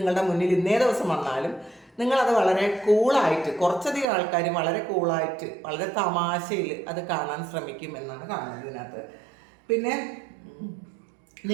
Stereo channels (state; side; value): drops out; left; at 4.0 s